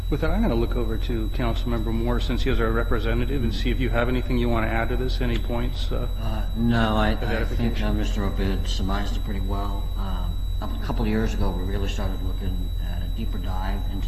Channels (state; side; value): identical; both; correlation 1.00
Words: With that, I'm going to look over to Councilmember Moore, since he is our representative, and see if you have anything you want to add to this, any points? No, I think Mr. Obid surmised it pretty well. a couple of years ago, we really started looking at a deeper dive into